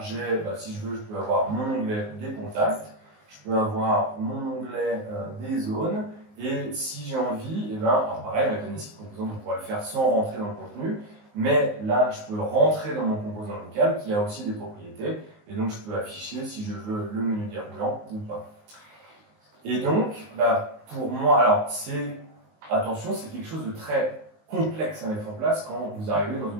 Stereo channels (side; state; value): left; late; 19 ms